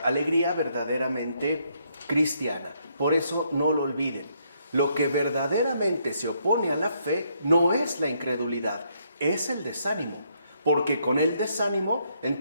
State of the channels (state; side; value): inverted; both; correlation -0.73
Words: verdaderamente cristiana. Por eso no lo olviden. Lo que verdaderamente se opone a la fe no es la incredulidad, es el desánimo. Porque con el desánimo,